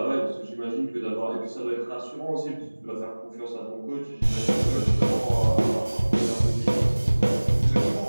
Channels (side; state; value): both; inverted; correlation -1.00